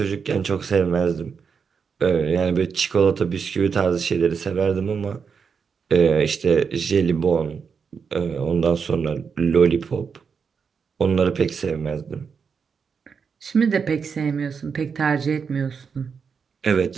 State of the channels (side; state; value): left; quieter; 6.0 dB